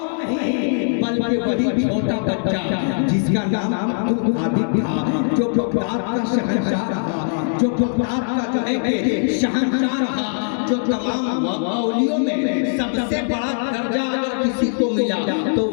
नहीं बल्कि वही छोटा बच्चा जिसका नाम अब्दुल कादिर था, जो बगदाद का शहंशाह रहा, जो बगदाद का जो है कि शहंशाह रहा, जो तमाम मौलियों में सबसे बड़ा दर्जा अगर किसी को मिला तो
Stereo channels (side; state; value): right; silent; digital silence